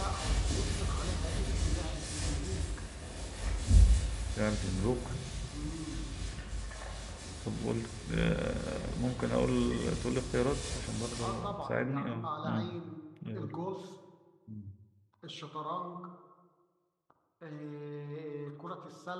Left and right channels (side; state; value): both; identical; correlation 1.00